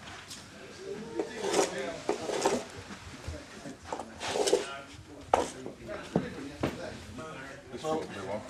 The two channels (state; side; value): identical; both; correlation 1.00